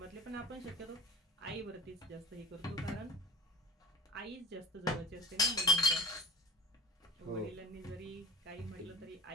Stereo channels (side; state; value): both; normal; correlation 0.36